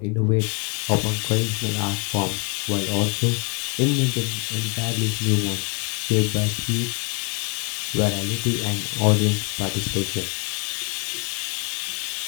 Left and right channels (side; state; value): right; quieter; 32.0 dB